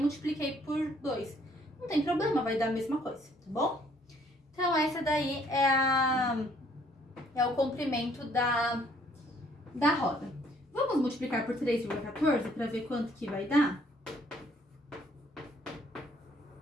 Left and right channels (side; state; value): both; normal; correlation 0.63